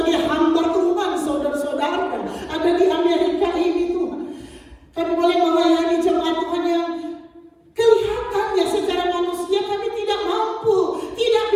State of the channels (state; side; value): identical; both; correlation 1.00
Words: hamba Tuhan, saudara-saudara, ada di Amerika ini Tuhan, kami boleh melayani jemaat Tuhan yang kelihatannya secara manusia kami tidak mampu, tidak